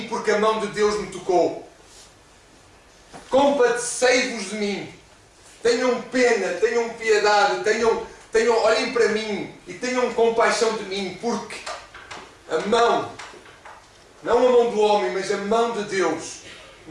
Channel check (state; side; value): identical; both; correlation 1.00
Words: porque a mão de Deus me tocou. Compadecei-vos de mim. Tenham pena, tenham piedade, olhem para mim e tenham compaixão de mim, porque a mão, não a mão do homem, mas a mão de Deus